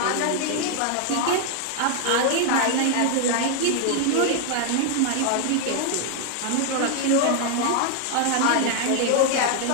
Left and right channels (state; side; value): different; both; correlation 0.00